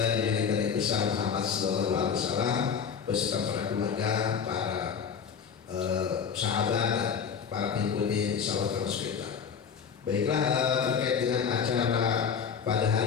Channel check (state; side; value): quieter; right; 6.8 dB